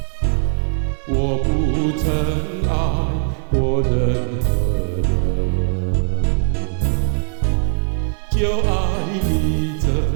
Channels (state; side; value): silent; left; 64 dB below the other